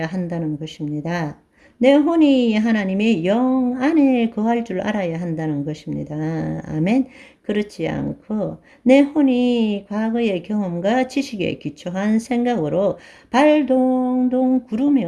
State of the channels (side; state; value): both; identical; correlation 1.00